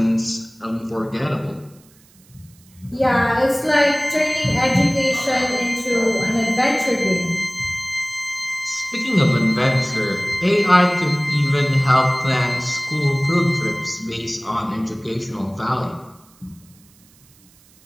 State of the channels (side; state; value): right; noise; hiss, 29 dB below the sound